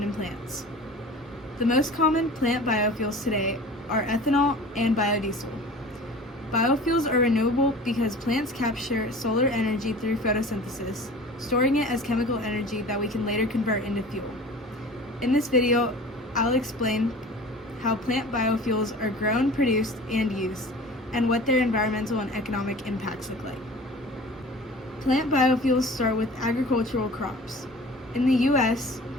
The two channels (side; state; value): both; normal; correlation 0.41